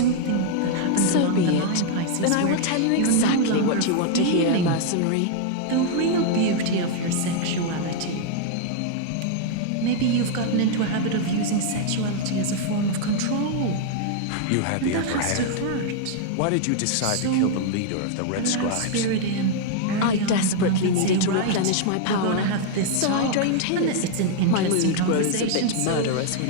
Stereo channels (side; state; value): both; different; correlation 0.00